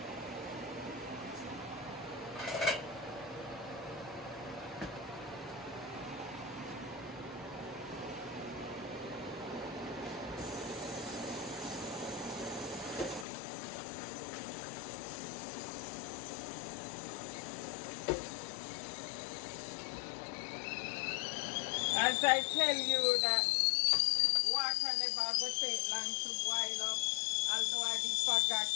as I tell you that water never go take long to boil up, although I did forget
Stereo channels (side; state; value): right; drops out; at 13.2 s